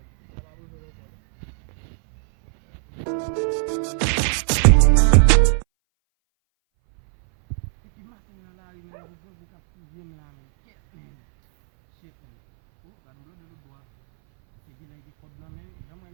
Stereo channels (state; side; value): silent; left; 63 dB below the other